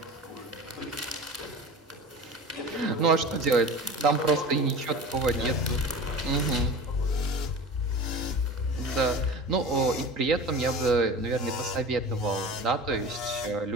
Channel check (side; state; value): both; normal; correlation 0.35